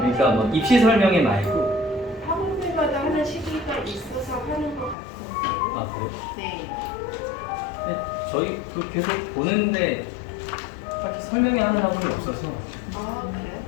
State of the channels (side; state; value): right; drops out; at 5.0 s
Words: 뭐 입시 설명회 말고. 학원들마다 하는 시기가 있어서 하는 것 같은데. 아 그래요? 네. 네, 저희도 계속 보는데 딱히 설명회 하는 학원이 없어서 아 그래요?